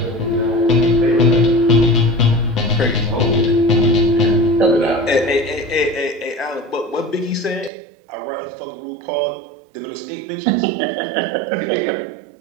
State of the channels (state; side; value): drops out; left; at 7.7 s